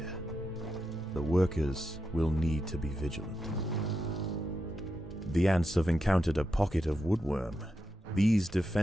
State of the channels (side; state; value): both; normal; correlation 0.86